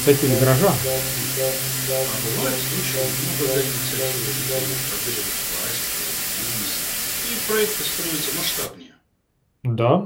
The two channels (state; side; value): identical; both; correlation 1.00